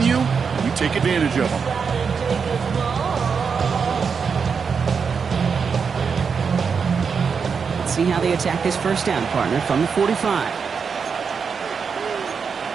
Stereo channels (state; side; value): quieter; left; 5.9 dB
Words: and you take advantage of them. See how they attack this first down, partner, from the 45.